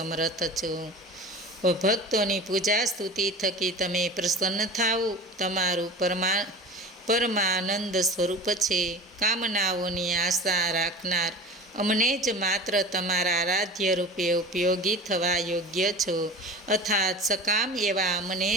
છો. ભક્તોની પૂજા સ્તુતિ થકી તમે પ્રસન્ન થાઓ. તમારું પરમાનંદ સ્વરૂપ છે. કામનાઓની આશા રાખનાર અમને જ માત્ર તમારા આરાધ્ય રૂપે ઉપયોગી થવા યોગ્ય છો. અર્થાત સકામ એવા અમને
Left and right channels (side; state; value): both; normal; correlation 0.35